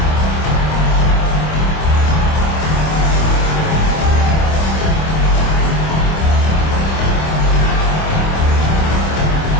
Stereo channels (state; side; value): late; right; 26 ms